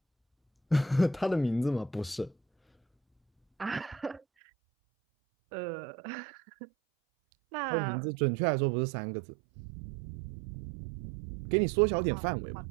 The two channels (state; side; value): drops out; left; at 4.2 s